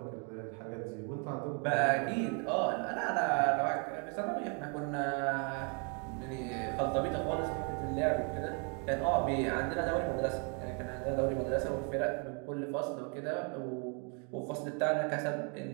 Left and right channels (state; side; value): quieter; left; 37.4 dB